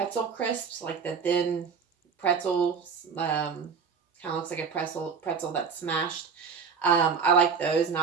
crisps, like the thin pretzels. Kind of looks like a pretzel that's smashed. I like those, and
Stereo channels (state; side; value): quieter; left; 5.9 dB